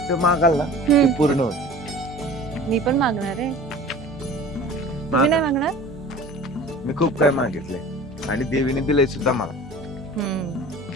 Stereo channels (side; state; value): both; normal; correlation 0.42